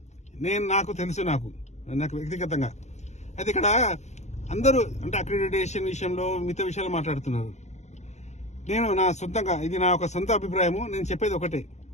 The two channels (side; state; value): right; late; 0.33 ms